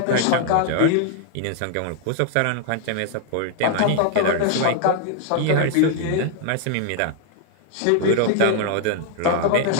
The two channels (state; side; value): different; both; correlation 0.00